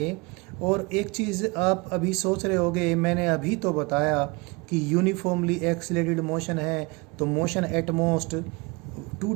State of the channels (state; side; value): quieter; left; 26.7 dB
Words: और एक चीज़ आप अभी सोच रहे होगे, मैंने अभी तो बताया कि यूनिफॉर्मली एक्सीलरेटेड मोशन है तो मोशन एट मोस्ट 2